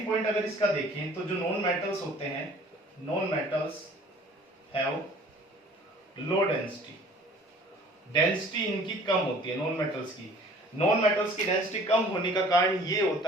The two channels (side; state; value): both; normal; correlation 0.51